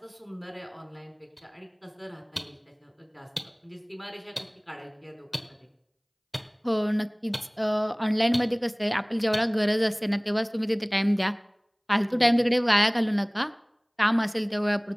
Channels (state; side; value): identical; both; correlation 1.00